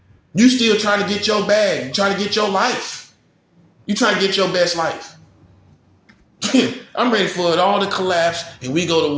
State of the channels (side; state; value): both; identical; correlation 1.00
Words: You still trying to get your bag. You trying to get your life. You trying to get your best life. I'm ready for it all to collapse and we go to